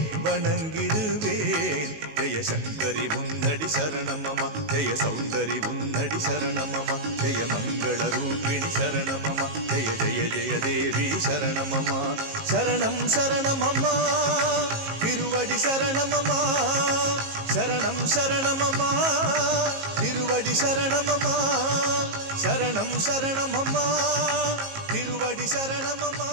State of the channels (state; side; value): late; left; 19 ms